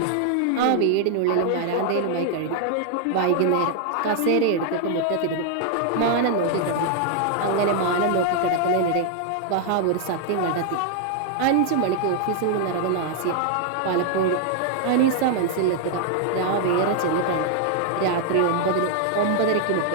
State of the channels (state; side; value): different; both; correlation 0.00